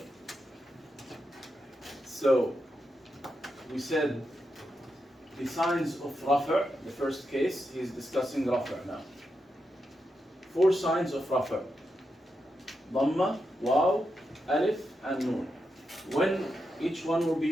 So, we said the signs of rafa', the first case, he's discussing rafa' now. 4 signs of rafa'. Dhamma, Waw, Alif, and Noon. When each one will be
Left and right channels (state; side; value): normal; both; correlation 0.86